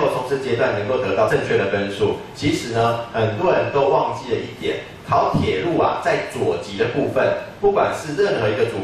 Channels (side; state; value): both; identical; correlation 1.00